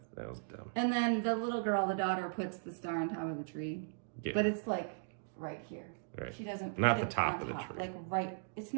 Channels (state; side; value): silent; left; digital silence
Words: that was dumb. And then the little girl, the daughter, puts the star on top of the tree. Yeah. But it's like right here. Right. She doesn't Not put the it top on of the tree. Like right, it's